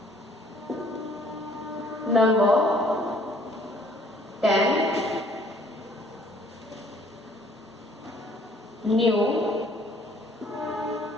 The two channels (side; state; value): both; normal; correlation 0.59